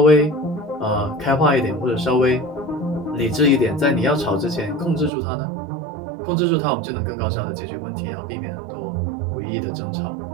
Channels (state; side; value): drops out; left; at 5.1 s